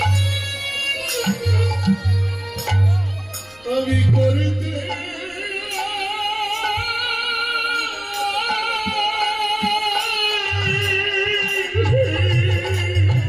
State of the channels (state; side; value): noise; left; rumble, 29 dB below the sound